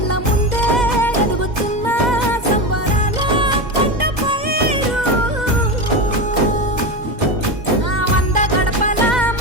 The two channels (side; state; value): left; late; 2.0 ms